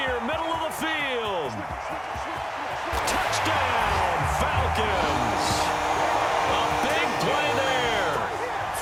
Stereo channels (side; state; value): both; identical; correlation 1.00